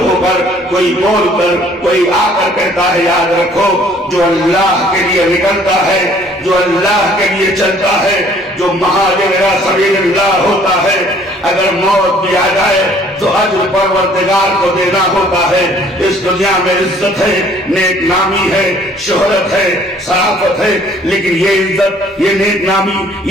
کر، کوئی بول کر، کوئی آ کر کہتا ہے یاد رکھو جو اللہ کے لیے نکلتا ہے، جو اللہ کے لیے چلتا ہے، جو مہاجر الی سبیل اللہ ہوتا ہے، اگر موت بھی آ جائے تو اجر پروردگار کو دینا ہوتا ہے. اس دنیا میں عزت ہے، نیک نامی ہے، شہرت ہے، شرافت ہے، لیکن یہ عزت، یہ نیک نامی،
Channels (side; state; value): both; normal; correlation 0.58